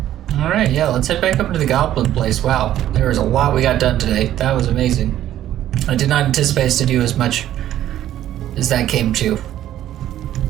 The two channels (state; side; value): quieter; left; 12.4 dB